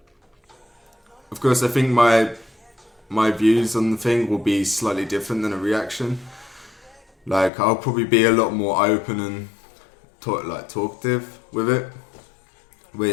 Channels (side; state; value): right; drops out; at 7.5 s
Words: course, I think my views on the thing will be slightly different than a reaction. I'll probably be a lot more open and talkative with it,